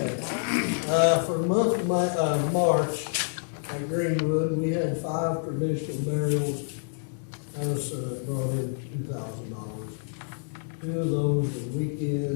For the month of March at Greenwood, we had 5 traditional burials. That was brought in $2,000. 2 of those were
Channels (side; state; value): right; silent; digital silence